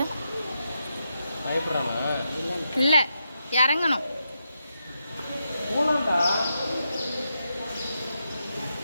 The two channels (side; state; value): both; inverted; correlation -0.85